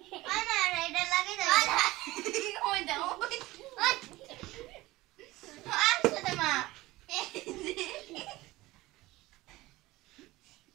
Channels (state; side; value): quieter; left; 19.1 dB